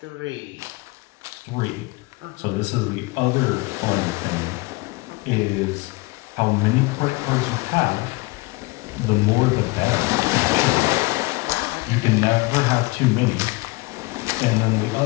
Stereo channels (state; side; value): quieter; right; 24.0 dB